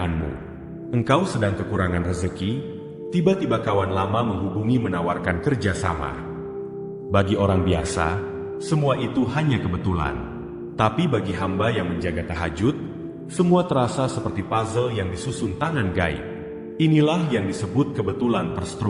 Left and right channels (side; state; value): both; identical; correlation 1.00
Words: Engkau sedang kekurangan rezeki, tiba-tiba kawan lama menghubungi menawarkan kerjasama. Bagi orang biasa, semua itu hanya kebetulan. Tapi bagi hamba yang menjaga tahajud, semua terasa seperti puzzle yang disusun tangan gaib. Inilah yang disebut kebetulan